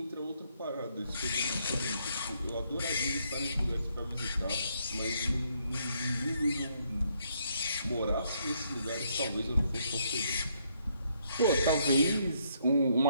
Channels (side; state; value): both; inverted; correlation -0.72